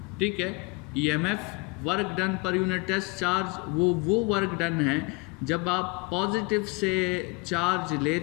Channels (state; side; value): quieter; right; 27.3 dB